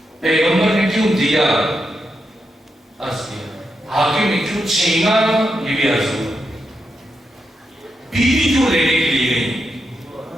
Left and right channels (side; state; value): both; normal; correlation 0.85